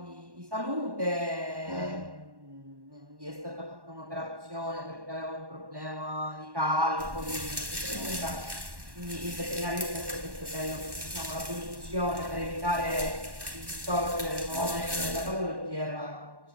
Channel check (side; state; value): left; late; 1.1 ms